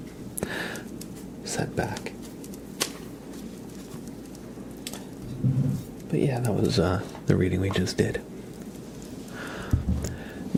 setback. But yeah, that was the reading we just did.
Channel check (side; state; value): both; identical; correlation 1.00